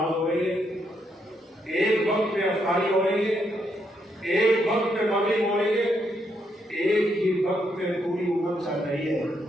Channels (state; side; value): normal; both; correlation 0.77